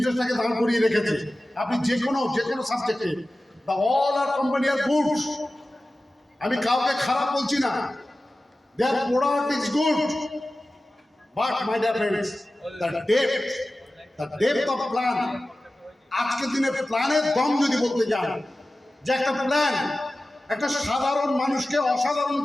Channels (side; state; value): both; normal; correlation 0.95